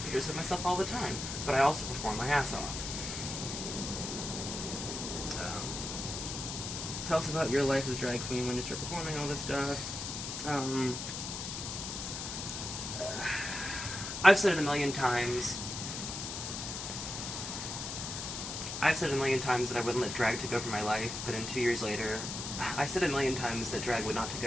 pictures of myself all the time, but I also perform my ass off. Tell us about your life as a drag queen when you start performing all this stuff. I've said it a million times. That I wouldn't let drag take over my life, but in 2 years later, I said a million times that drag would not take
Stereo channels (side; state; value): left; noise; hiss, 5 dB below the sound